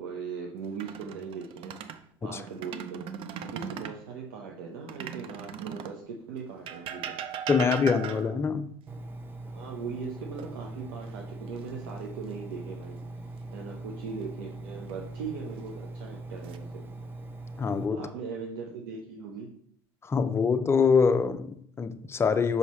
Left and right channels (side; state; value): right; quieter; 3.2 dB